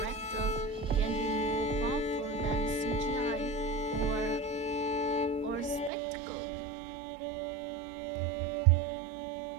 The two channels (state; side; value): drops out; left; at 5.9 s